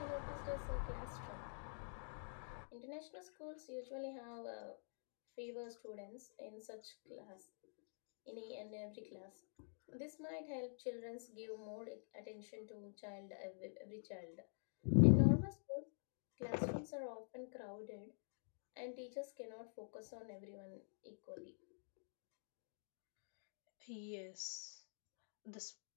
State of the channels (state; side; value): silent; right; digital silence